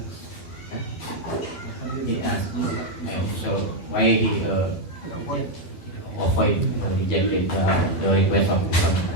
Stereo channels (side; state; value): right; late; 12 ms